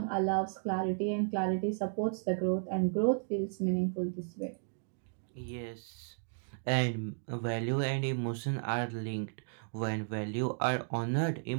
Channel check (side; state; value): left; silent; digital silence